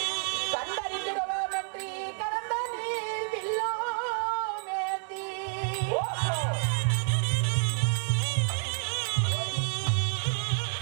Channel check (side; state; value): left; silent; 58 dB below the other